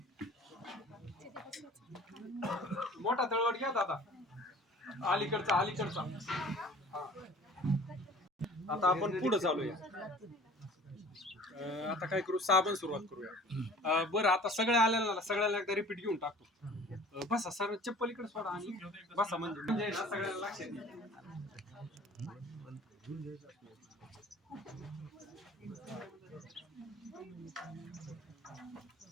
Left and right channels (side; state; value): both; normal; correlation 0.47